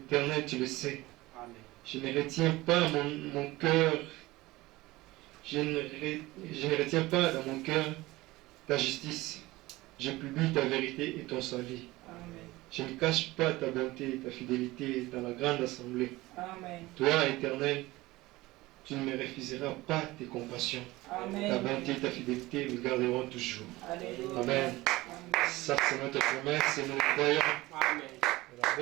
tu le sais. Je ne retiens pas mon cœur. Je ne retiens pas dans mon cœur ta justice. Je publie ta vérité et ton salut. Je ne cache pas ta bonté et ta fidélité dans la grande assemblée. Toi, Éternel, tu ne me refuseras pas tes compassions. Ta bonté et ta fidélité me garderont toujours. Amen. Ça, c'est notre promesse et nous le croyons.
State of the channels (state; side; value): quieter; left; 19.4 dB